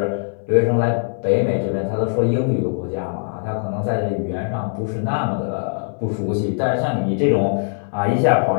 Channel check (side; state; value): right; silent; digital silence